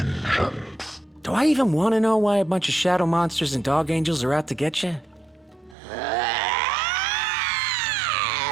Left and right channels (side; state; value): left; drops out; at 5.8 s